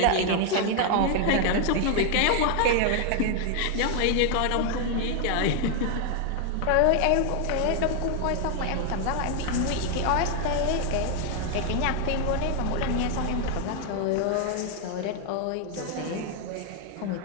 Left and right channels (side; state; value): both; different; correlation 0.00